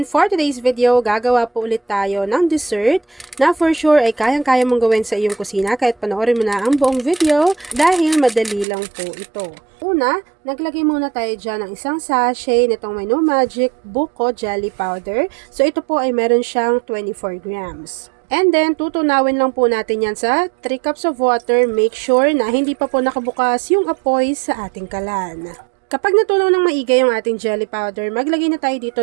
for today's video, gagawa po ulit tayo ng dessert na for sure ay kayang-kaya mong gawin sa iyong kusina kahit panoorin mo na ang buong video dahil madali lang po ito. Una, naglagay muna tayo dyan ng isang sachet nitong may no magic buko jelly powder. So ito po ay meron siyang 24 grams. And then, tutunawin lang po natin yan sa 3 cups of water. Make sure na hindi pa po nakabukas yung apoy sa ating kalan. Kapag natunaw ng maigay yung ating jelly powder, maglagay na tayo dito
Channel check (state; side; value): drops out; left; at 8.7 s